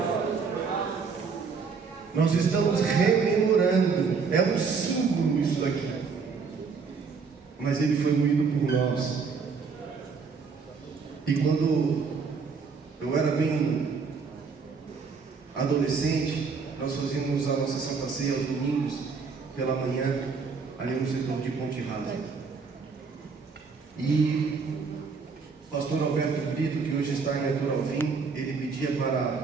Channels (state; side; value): quieter; left; 5.2 dB